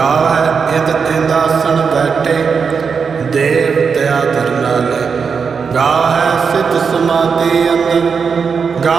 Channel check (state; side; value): quieter; left; 5.8 dB